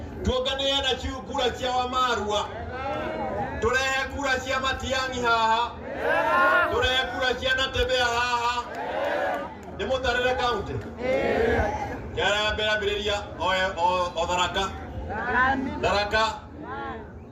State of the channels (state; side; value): identical; both; correlation 1.00